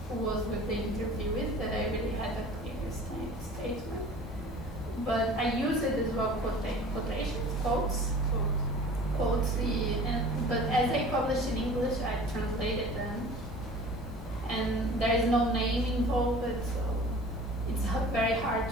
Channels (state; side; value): normal; both; correlation 0.43